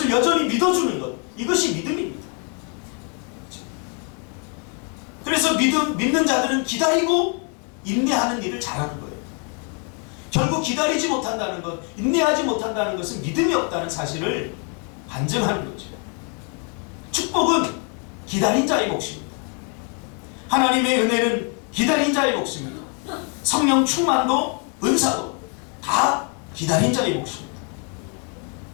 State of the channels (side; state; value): right; quieter; 38.8 dB